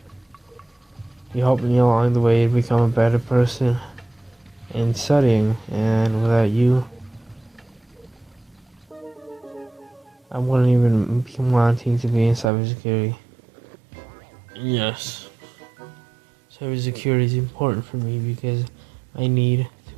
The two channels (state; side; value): drops out; left; at 12.5 s